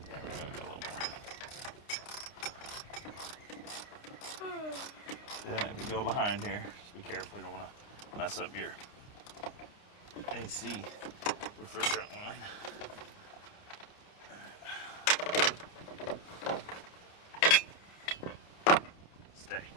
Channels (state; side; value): late; right; 29 ms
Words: Yeah, maybe a little more. Yeah, if you go behind here, just be careful. You don't want to mess up your AC refrigerant line. Stay.